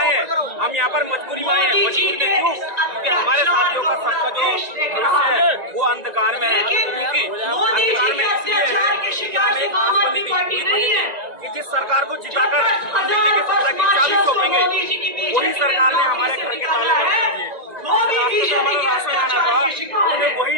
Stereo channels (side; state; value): left; late; 1.9 ms